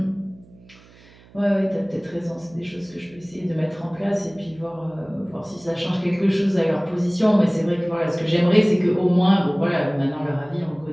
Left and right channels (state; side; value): noise; right; hum, 25 dB below the sound